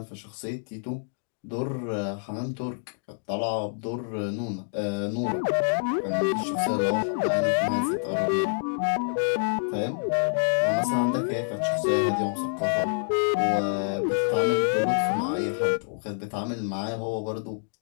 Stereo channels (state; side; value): silent; right; digital silence